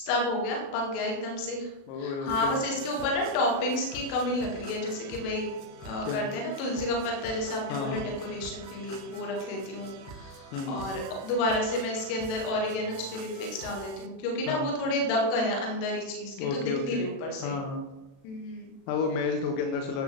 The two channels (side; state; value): right; late; 36 ms